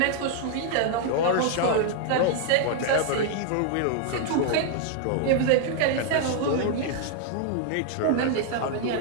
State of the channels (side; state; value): both; different; correlation 0.00